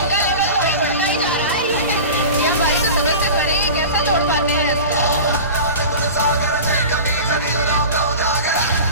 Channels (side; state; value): both; inverted; correlation -0.34